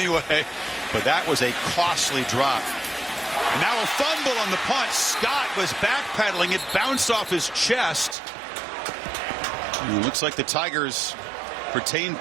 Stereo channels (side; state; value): left; drops out; at 8.2 s